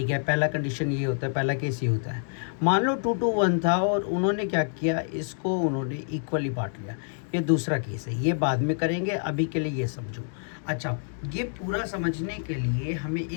है, पहला कंडीशन ये होता है, पहला केस ये होता है। मान लो 2:1 था और उन्होंने क्या किया, इसको उन्होंने इक्वली बांट लिया। ये दूसरा केस है, ये बाद में करेंगे, अभी के लिए ये समझो। अच्छा, ये पूरा समझने के लिए हमें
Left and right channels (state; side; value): silent; right; digital silence